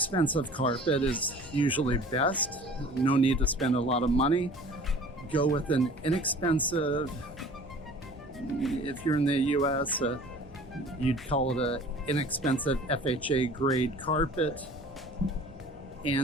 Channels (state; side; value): normal; both; correlation 0.46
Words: carpet is usually best. No need to spend a lot of money. Go with an inexpensive, if you're in the US, you'd call it an inexpensive FHA grade carpet.